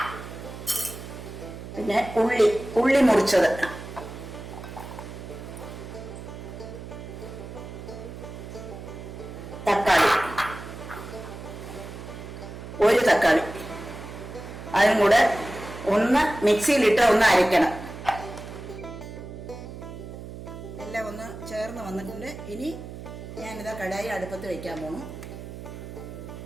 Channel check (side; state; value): right; noise; hum, 11 dB below the sound